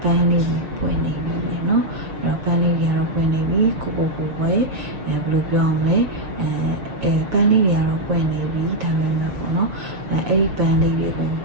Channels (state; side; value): late; left; 6.4 ms